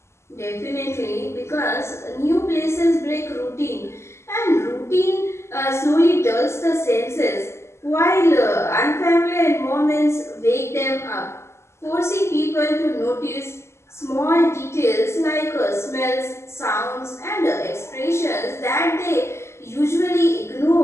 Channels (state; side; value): late; right; 0.13 ms